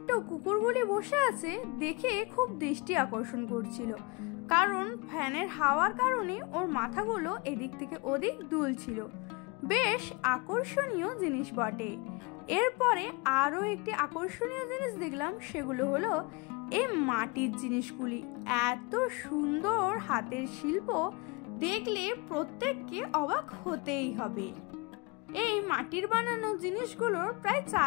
কুকুরগুলি বসে আছে দেখে খুব দৃষ্টি আকর্ষণ করছিল, কারণ ফ্যানের হাওয়ার কারণে ওর মাথাগুলো এদিক থেকে ওদিক দুলছিল। বেশ আকর্ষণীয় জিনিস বটে। এরপরে আরও একটি আকর্ষণীয় জিনিস দেখলাম, সেগুলো হলো এই মাটির জিনিসগুলি। এত সুন্দর হাতের শিল্প দেখলে প্রত্যেককে অবাক হতেই হবে। এই মাটির বানানো জিনিসগুলোর প্রায়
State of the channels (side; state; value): right; quieter; 27.6 dB